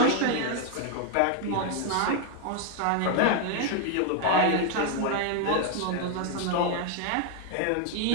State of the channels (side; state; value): both; different; correlation 0.00